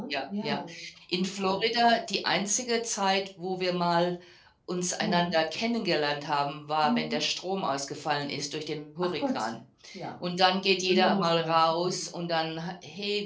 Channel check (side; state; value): both; identical; correlation 1.00